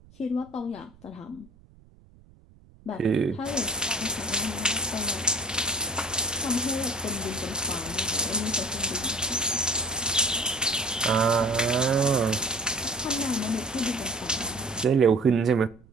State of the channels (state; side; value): noise; right; rumble, 26 dB below the sound